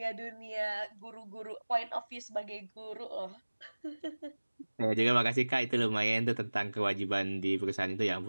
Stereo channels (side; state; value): both; inverted; correlation -1.00